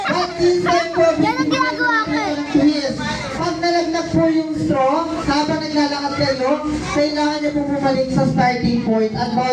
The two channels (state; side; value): identical; both; correlation 1.00